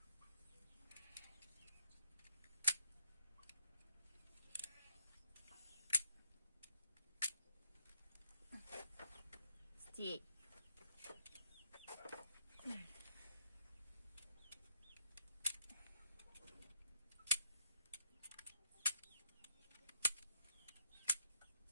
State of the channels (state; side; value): inverted; both; correlation -0.70